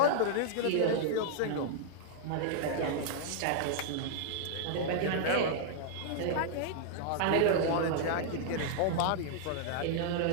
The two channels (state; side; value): different; both; correlation -0.01